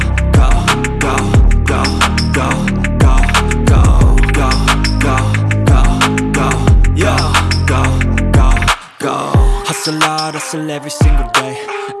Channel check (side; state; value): both; identical; correlation 1.00